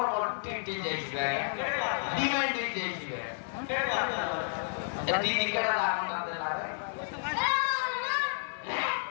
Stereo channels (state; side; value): silent; right; digital silence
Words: tinggi jadi, demand jadi. Jadi didi kena lakukan lagi.